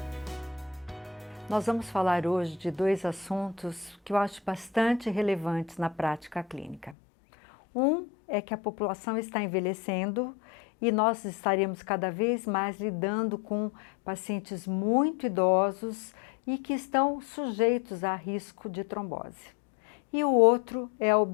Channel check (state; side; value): drops out; right; at 7.0 s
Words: Nós vamos falar hoje de dois assuntos que eu acho bastante relevantes na prática clínica. Um é que a população está envelhecendo e nós estaremos cada vez mais lidando com pacientes muito idosos e que estão sujeitos a risco de trombose. E o outro é a